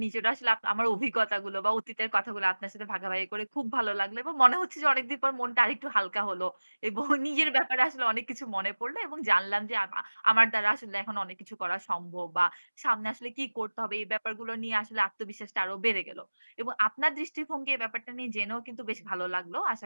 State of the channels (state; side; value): inverted; both; correlation -1.00